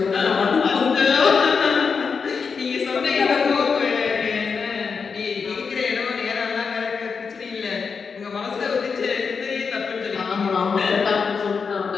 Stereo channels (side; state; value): right; quieter; 5.5 dB